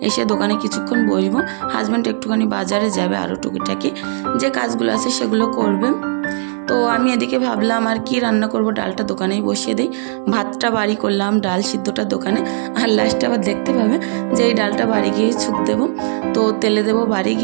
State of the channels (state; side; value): silent; left; digital silence